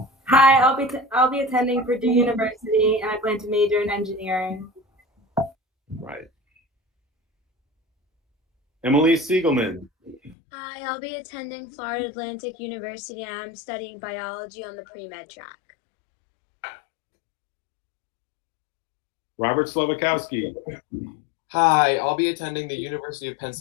Hi, I'll be attending Purdue University and I plan to major in engineering. Right. Emily Siegelman. Hi, I'll be attending Florida Atlantic University and I'm studying biology on the pre-med track. Robert Slavakowski. Hi, I'll be attending the University of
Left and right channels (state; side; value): drops out; right; at 10.4 s